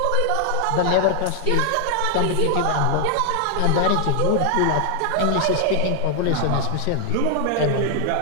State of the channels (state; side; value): different; both; correlation 0.00